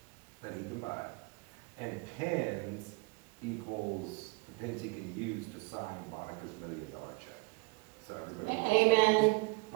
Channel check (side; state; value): left; quieter; 27.5 dB